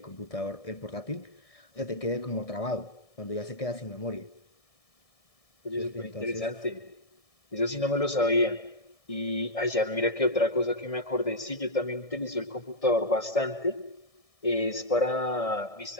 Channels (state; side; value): late; right; 1.7 ms